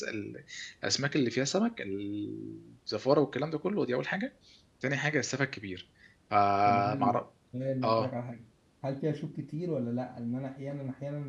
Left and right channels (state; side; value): identical; both; correlation 1.00